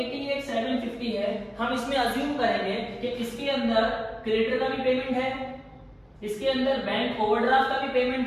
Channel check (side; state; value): both; identical; correlation 1.00